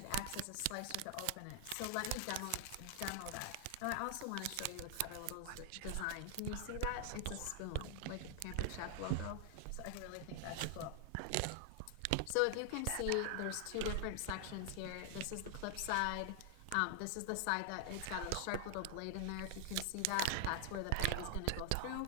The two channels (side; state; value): both; different; correlation 0.00